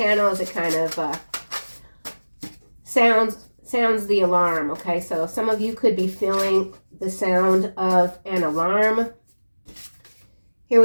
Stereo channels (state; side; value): inverted; both; correlation -1.00